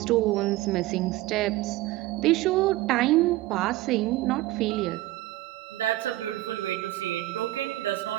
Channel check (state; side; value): quieter; left; 17.4 dB